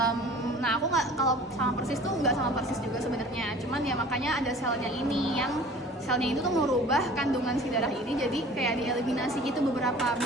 Nah, aku nggak, kalau sama persis tuh nggak sama persis juga sebenarnya. Cuman ya makanya ada selnya ini yang selnya itu tuh merubah kandungan si darah ini jadi kayak dieliminasi gitu beberapa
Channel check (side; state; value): both; normal; correlation 0.45